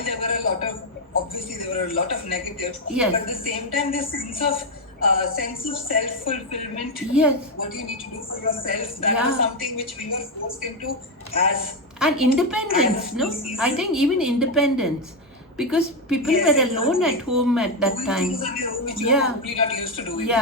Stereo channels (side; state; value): both; normal; correlation 0.07